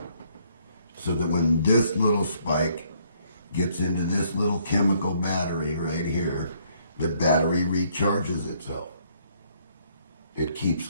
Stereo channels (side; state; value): both; inverted; correlation -0.66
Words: So that when this little spike gets into this little chemical battery right here, the battery recharges itself. It keeps